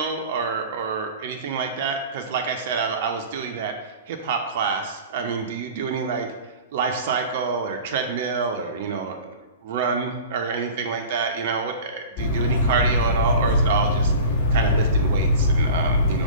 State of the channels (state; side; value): inverted; both; correlation -0.38